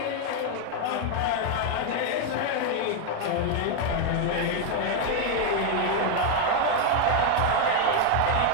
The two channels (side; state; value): both; different; correlation 0.01